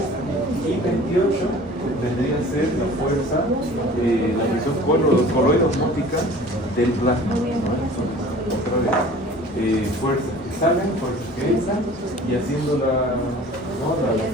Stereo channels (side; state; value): both; normal; correlation 0.45